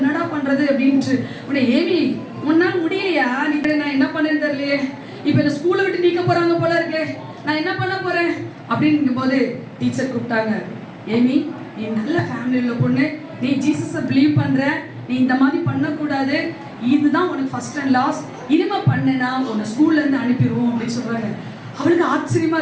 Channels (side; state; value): both; identical; correlation 1.00